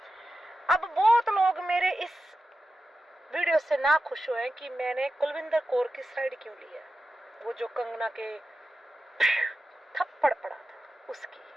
अब बहुत लोग मेरे इस वीडियो से ना खुश हुए कि मैंने कुलविंदर कौर की साइड क्यों ली है। वो जो कंगना के थप्पड़ पड़ा था उसकी।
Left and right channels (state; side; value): normal; both; correlation 0.93